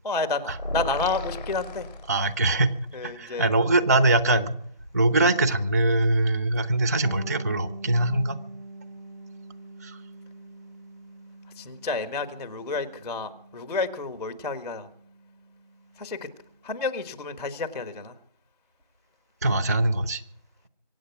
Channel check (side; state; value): both; inverted; correlation -0.50